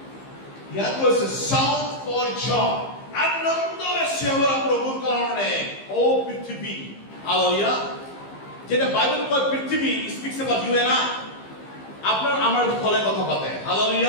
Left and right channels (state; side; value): late; right; 15 ms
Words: ইয়াত কৈছে shout for joy. আনন্দৰে সেৱা প্ৰভুৰ কাৰণে ও পৃথিৱী হালেলুয়া যেটা বাইবেল কয় পৃথিৱী speaks about you and I আপনাৰ আমাৰ ফলে কথা পাতে